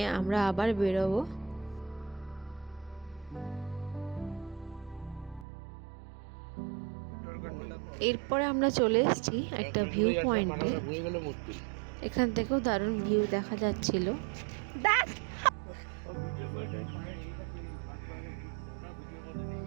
আমরা আবার বেরোবো। এরপরে আমরা চলে এসেছি একটা ভিউ পয়েন্টে। এখান থেকেও দারুণ ভিউ দেখা যাচ্ছিল।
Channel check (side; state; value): left; drops out; at 5.5 s